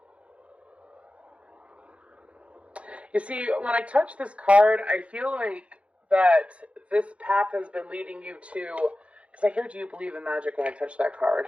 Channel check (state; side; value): late; left; 0.062 ms